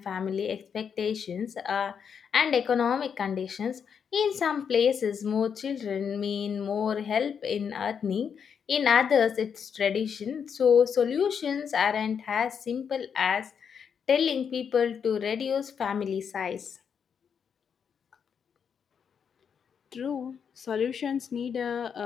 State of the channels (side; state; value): right; quieter; 7.1 dB